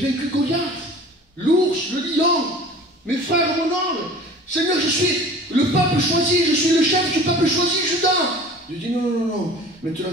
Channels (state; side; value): normal; both; correlation 0.43